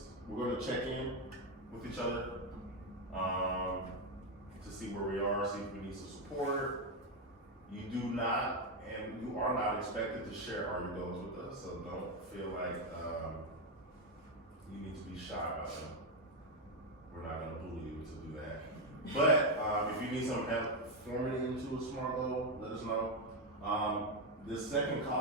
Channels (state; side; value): normal; both; correlation 0.06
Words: we're gonna check in with each other to see where we are, see if we need some support. You do not, and you are not expected to share all your goals with us, so don't feel like you need to be shy about them. We're not gonna bully you to do that. But if you need some help forming into a SMART goal, let us know. The second